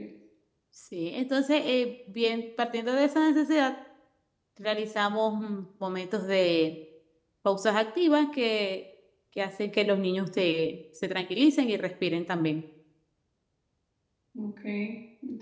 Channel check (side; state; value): both; identical; correlation 1.00